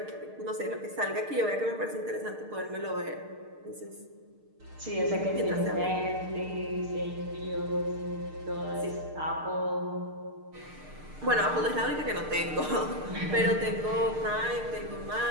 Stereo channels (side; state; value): left; late; 6.6 ms